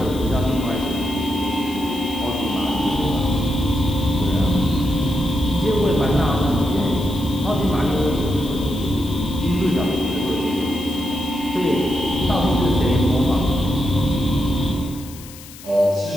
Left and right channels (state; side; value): noise; left; hiss, 18 dB below the sound